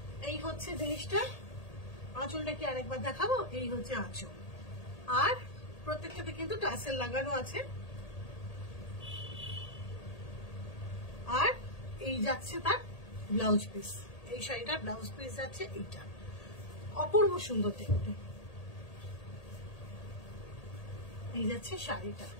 এই হচ্ছে জিনিসটা। আঁচলটা কি আরেকবার দেখাবো? এই হচ্ছে আঁচল, আর প্রত্যেকটাতে কিন্তু টাসেল লাগানো আছে। আর এই যাচ্ছে তার ব্লাউজ পিস, এই শাড়িটার ব্লাউজ পিস যাচ্ছে এইটা, অপূর্ব সুন্দর দেখতে। এই যাচ্ছে শাড়িটা,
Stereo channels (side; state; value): right; late; 1.8 ms